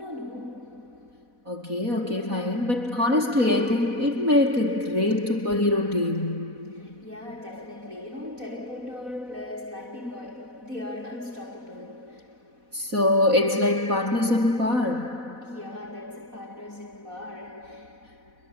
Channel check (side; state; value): left; late; 4.1 ms